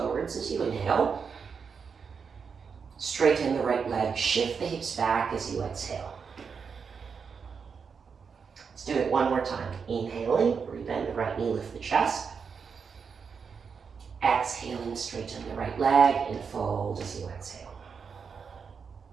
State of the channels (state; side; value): quieter; left; 6.0 dB